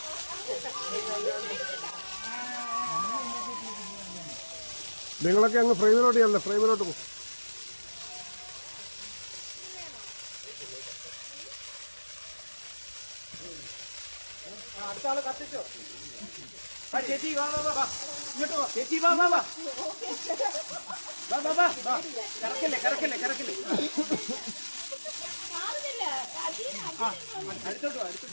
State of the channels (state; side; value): inverted; both; correlation -1.00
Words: നിങ്ങളൊക്കെ അങ്ങ് ഫ്രെയിമിലോട്ട് ചെല്ലേ, ഫ്രെയിമിലോട്ട് പോകും. അടുത്ത ആള് കത്തിച്ചോ. ചേച്ചി വാ വാ വാ, ഇങ്ങോട്ട് വാ ചേച്ചി, വാ വാ വാ വാ വാ വാ വാ. കറക്കല്ലേ കറക്കല്ലേ കറക്കല്ലേ. അടുത്തോട്ട് വാ,